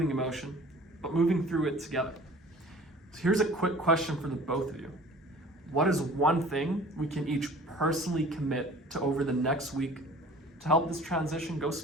emotion, but moving through it together. So here's a quick question for the both of you. What is one thing we can each personally commit to over the next week to help this transition go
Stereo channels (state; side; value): normal; both; correlation 0.47